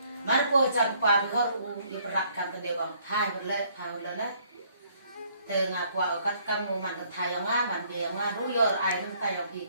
mà cô chăm pa bị họ đi bật cam tên đều bằng thay một lần đấy từ ngà qua ở các cam mùa mặn thay ở ngà mặn bìa ngà rú giờ ai mình tay ở bị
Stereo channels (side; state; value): both; inverted; correlation -0.65